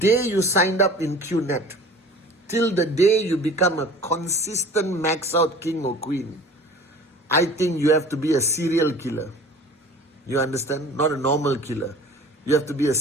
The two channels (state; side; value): normal; both; correlation 0.44